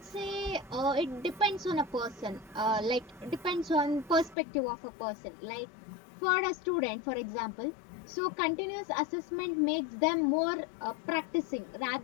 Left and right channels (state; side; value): drops out; right; at 4.4 s